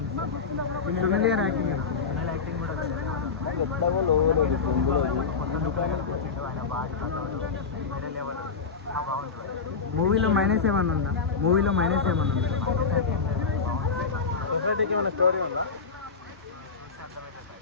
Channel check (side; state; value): right; quieter; 5.1 dB